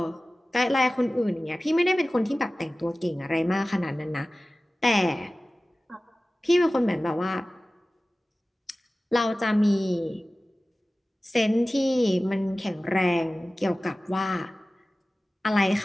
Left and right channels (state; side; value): normal; both; correlation 0.97